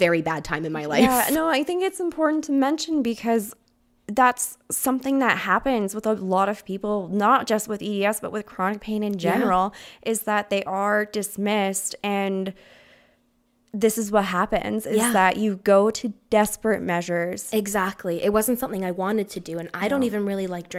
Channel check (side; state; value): both; identical; correlation 1.00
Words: bad time in my life. Yeah, no, I think it's important to mention because that's something that happens with a lot of people, not just with EDS, but with chronic pain in general, is that they are dismissed. And this is what happens, is that you go to desperate measures. Exactly. It wasn't something I wanted to do. And I don't even really like